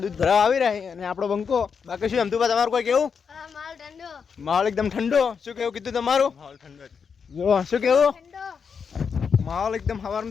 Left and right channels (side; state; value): right; quieter; 6.2 dB